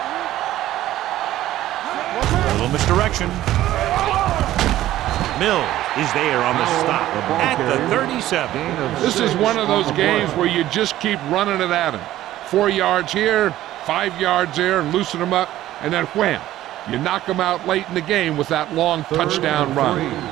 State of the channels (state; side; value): quieter; left; 14.2 dB